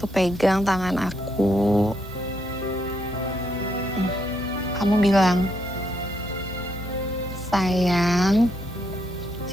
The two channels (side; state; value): right; noise; hiss, 27 dB below the sound